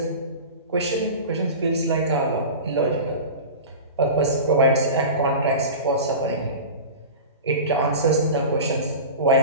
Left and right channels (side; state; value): both; inverted; correlation -0.31